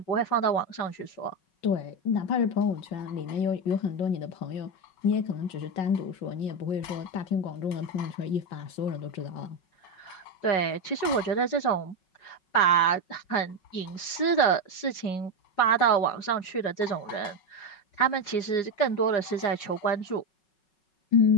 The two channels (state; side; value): late; right; 5.4 ms